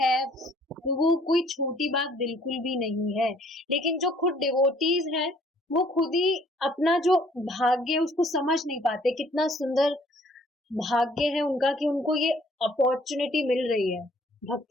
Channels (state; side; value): normal; both; correlation 0.60